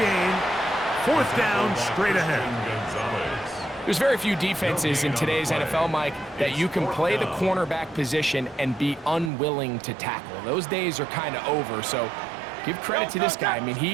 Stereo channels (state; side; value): drops out; left; at 9.3 s